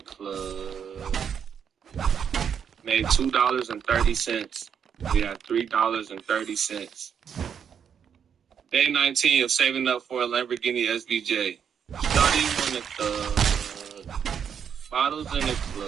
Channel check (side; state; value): left; quieter; 7.7 dB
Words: Made $2.30. We had $3.30. Day 19 of saving up for a Lamborghini SVJ. Shawty wanted the bottles in the